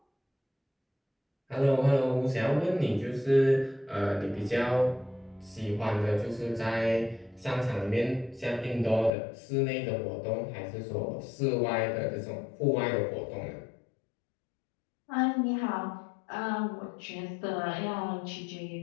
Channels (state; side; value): drops out; right; at 9.1 s